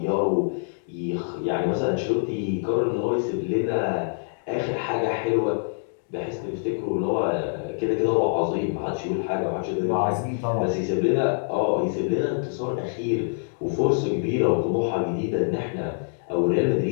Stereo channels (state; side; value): silent; right; 62 dB below the other